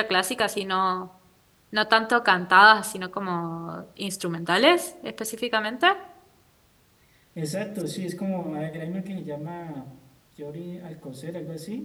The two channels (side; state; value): both; identical; correlation 1.00